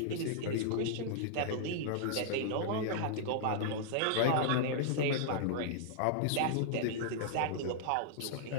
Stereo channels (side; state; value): both; different; correlation -0.01